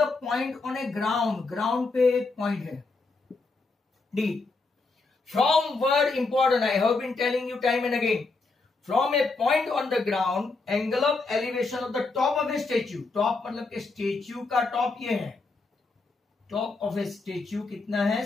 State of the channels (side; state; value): right; quieter; 3.7 dB